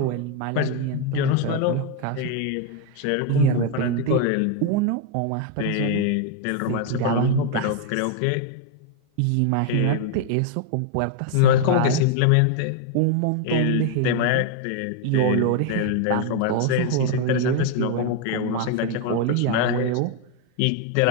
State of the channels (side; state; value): both; different; correlation 0.01